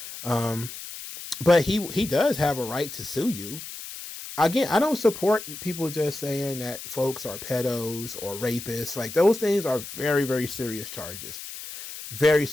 But he does have a right to sue you. Again, I don't support people just saying that folks are pedos or rapists. Like, those things are very, very serious charges. Very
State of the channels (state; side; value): noise; left; hiss, 11 dB below the sound